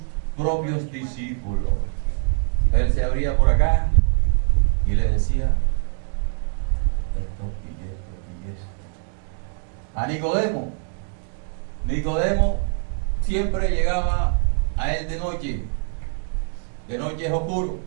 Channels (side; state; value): left; silent; 59 dB below the other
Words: propios discípulos. Él se abría por acá y le decía esto y esto y esto. A Nicodemo. Nicodemo siempre llegaba a él de noche. De noche es oscuro,